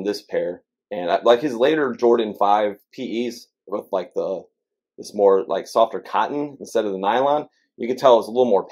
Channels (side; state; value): both; identical; correlation 1.00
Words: this pair. And like his later Jordan 5 PEs with like this more like softer cotton instead of the nylon, you can tell it's a little more